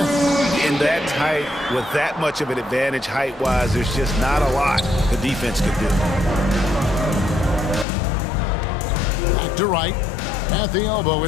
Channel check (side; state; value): right; drops out; at 7.9 s